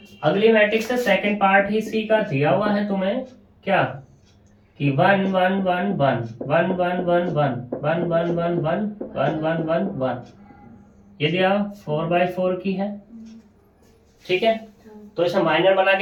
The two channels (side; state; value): both; identical; correlation 1.00